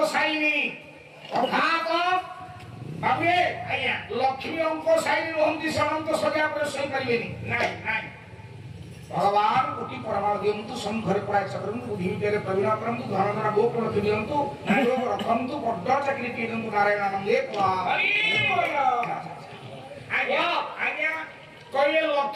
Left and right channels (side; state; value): both; identical; correlation 1.00